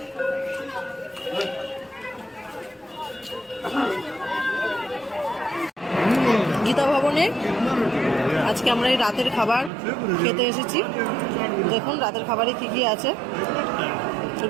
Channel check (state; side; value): drops out; left; at 9.7 s